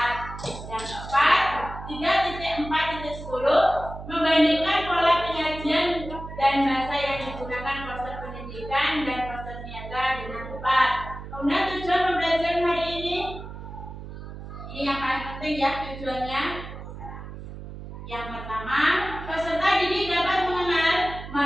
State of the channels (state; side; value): noise; right; hum, 11 dB below the sound